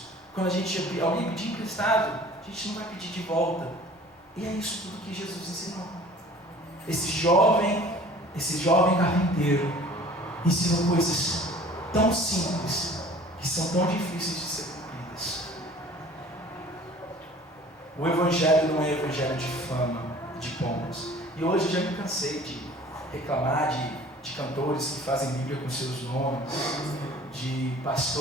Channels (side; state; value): both; normal; correlation 0.48